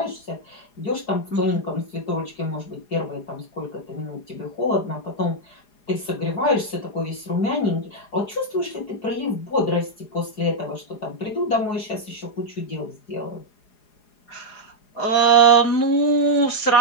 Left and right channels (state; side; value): late; right; 4.8 ms